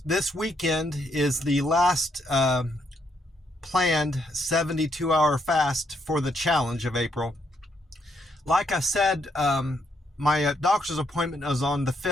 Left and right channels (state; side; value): normal; both; correlation 0.75